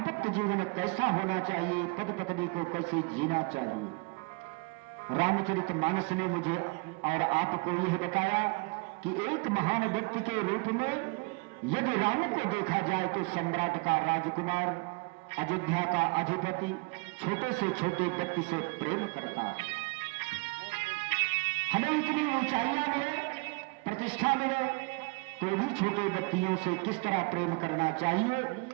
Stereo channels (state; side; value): quieter; left; 29.5 dB